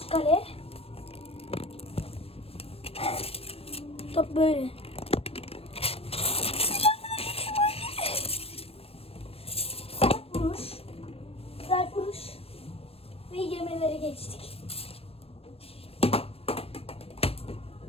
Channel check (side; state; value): right; late; 0.28 ms